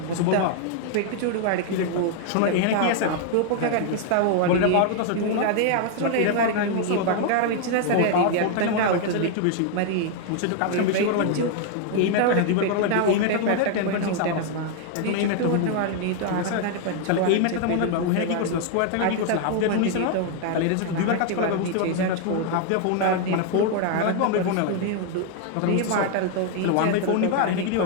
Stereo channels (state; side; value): different; both; correlation 0.00